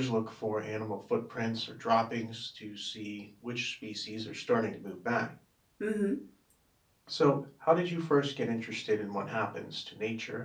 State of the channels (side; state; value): both; identical; correlation 1.00